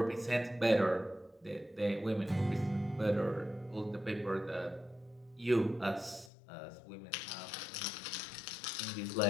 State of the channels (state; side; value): drops out; right; at 6.3 s